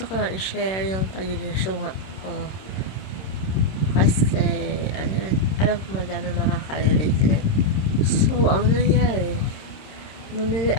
ko lang i-share yung pagiging syunga ko. Kasi, alam ko madami makaka-relate din. So, ang nangyari, bumili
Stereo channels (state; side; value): late; right; 26 ms